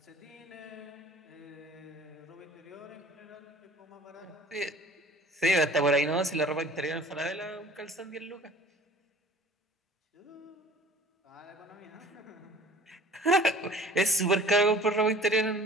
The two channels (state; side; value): normal; both; correlation 0.48